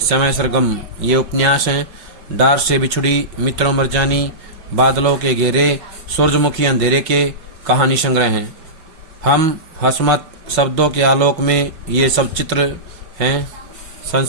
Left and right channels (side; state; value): left; late; 5.4 ms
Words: सरगम, ये उपन्यास हैं। डार से बिछुड़ी, मित्रों मरजानी, बादलों के घेरे, सूरजमुखी अंधेरे के कहानी संग्रह हैं। हम हसमत शब्दों के आलोक में ये सब चित्र हैं